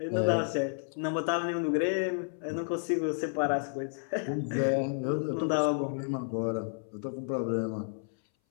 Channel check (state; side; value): silent; right; 57 dB below the other